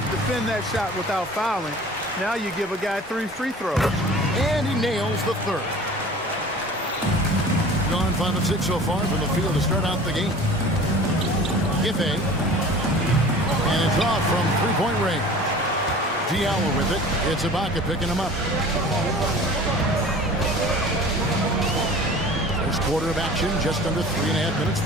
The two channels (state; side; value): normal; both; correlation 0.43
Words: defend that shot without fouling. Now you give a guy 3 free throws. And he nails the 3rd. Gone 5 of 6 so far from the field to start out the game. Giffey. And it's off from three-point range. Diallo with it. It's Ibaka picking him up. First quarter of action, just under 3.5 minutes